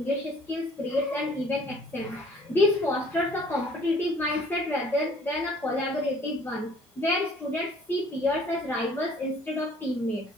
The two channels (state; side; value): normal; both; correlation 0.55